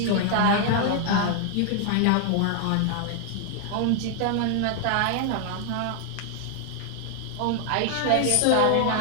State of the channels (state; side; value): different; both; correlation 0.00